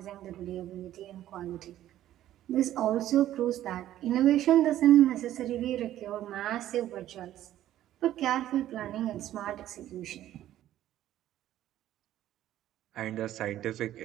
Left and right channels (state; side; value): quieter; left; 12.9 dB